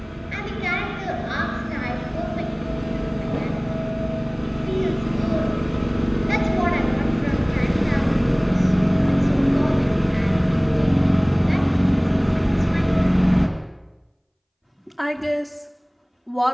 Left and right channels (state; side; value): identical; both; correlation 1.00